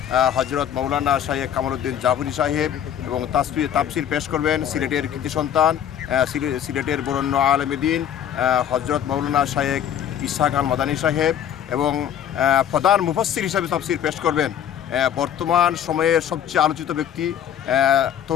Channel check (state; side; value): quieter; right; 9.7 dB